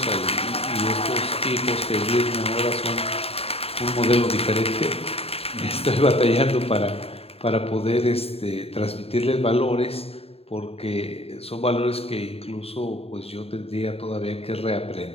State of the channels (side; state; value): right; late; 0.29 ms